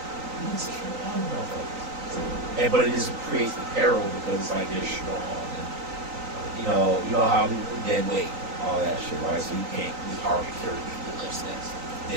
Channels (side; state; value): left; late; 3.9 ms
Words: you just kill all the motherfuckers. And, but it just creates the peril because it's like they're strong. And, you know how people dead weight, all that shit, right? So you can't, it's hard to carry people that's